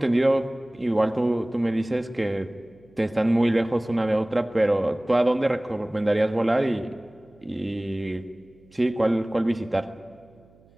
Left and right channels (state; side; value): noise; right; hum, 29 dB below the sound